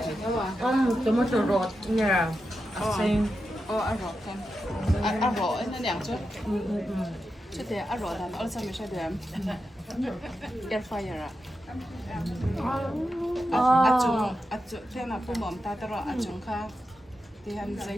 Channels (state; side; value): normal; both; correlation 0.89